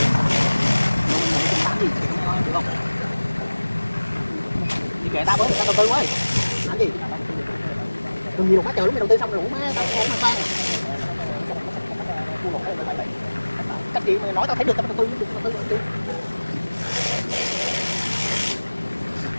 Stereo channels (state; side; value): inverted; both; correlation -1.00